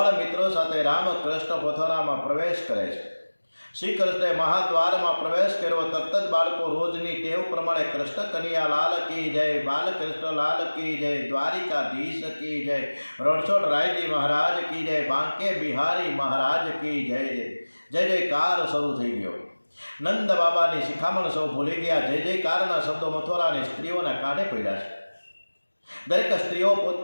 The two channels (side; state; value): both; inverted; correlation -1.00